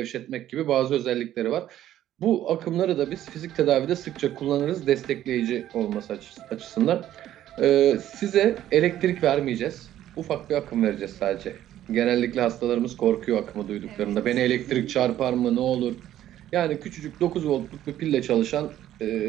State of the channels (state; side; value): quieter; left; 12.4 dB